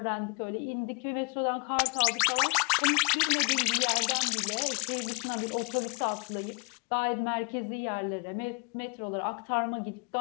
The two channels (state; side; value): quieter; right; 35.3 dB